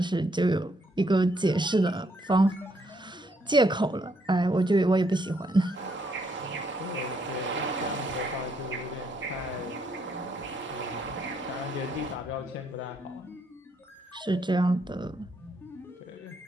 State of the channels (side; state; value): both; normal; correlation 0.73